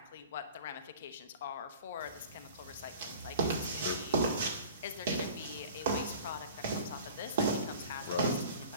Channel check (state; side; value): inverted; both; correlation -0.43